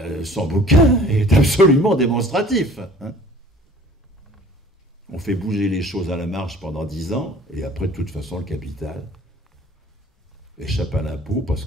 son bouquin est absolument démonstratif. Hein. On fait bouger les choses à la marche pendant 10 ans, et après, de toute façon, le capital échappe à l'impôt parce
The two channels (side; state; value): both; normal; correlation 0.50